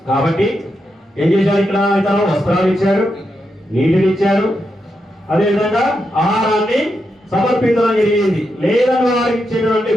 కాబట్టి ఏం చేశారు, ఇక్కడ ఇతను వస్త్రాలు ఇచ్చారు, నీటిని ఇచ్చారు, అదేవిధంగా ఆహారాన్ని సమర్పించడం జరిగింది. లేదని వారికి ఇచ్చేటువంటి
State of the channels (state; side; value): normal; both; correlation 0.85